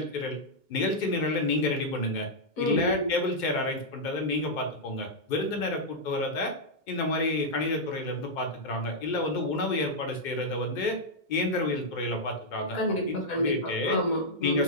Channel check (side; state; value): right; late; 2.2 ms